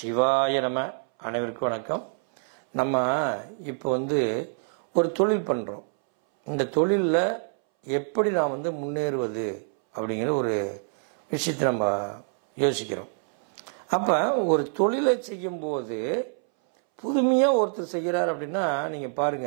நம. அனைவருக்கும் வணக்கம். நம்ம இப்போ ஒரு தொழில் பண்ணுறோம். இந்த தொழிலில் எப்படி நான் முன்னேறுவது அப்படிங்கிற ஒரு விஷயத்தை நம்ம யோசிக்கிறோம். அப்போ ஒரு தொழிலை செய்யும்போது புதுமையாக ஒருத்தர் செய்கிறார் அப்படின்னா நீங்கள்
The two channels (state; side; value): silent; left; 61 dB below the other